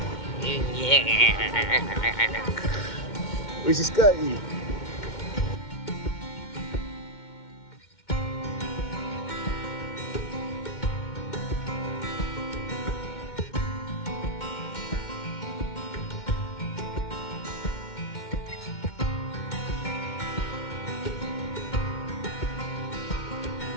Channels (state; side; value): late; right; 2.1 ms